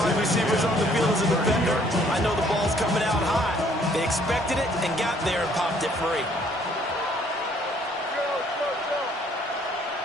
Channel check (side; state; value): both; normal; correlation 0.62